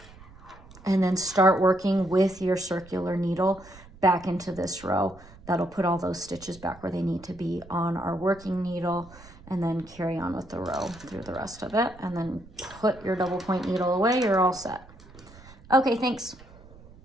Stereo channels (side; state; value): right; noise; rumble, 21 dB below the sound